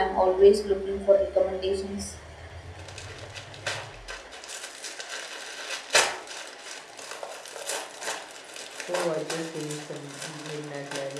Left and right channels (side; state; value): both; identical; correlation 1.00